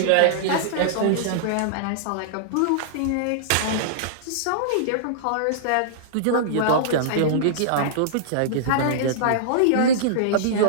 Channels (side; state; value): both; different; correlation -0.02